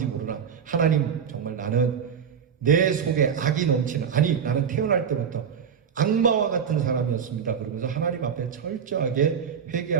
모르나 하나님, 정말 나는 내 속에 악이 넘치는, 아니 나는 태어날 때부터 악마와 같은 사람이었습니다. 그러면서 하나님 앞에 철저하게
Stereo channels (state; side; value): quieter; left; 7.3 dB